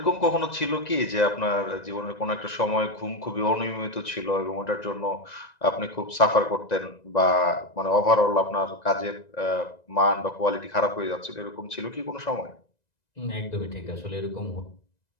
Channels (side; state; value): right; late; 1.9 ms